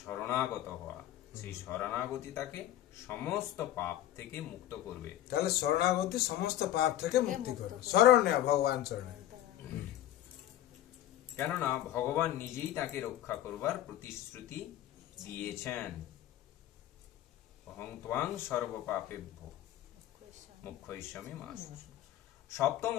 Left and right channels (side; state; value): right; quieter; 12.8 dB